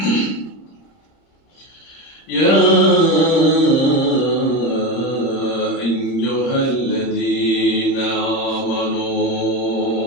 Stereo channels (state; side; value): late; right; 30 ms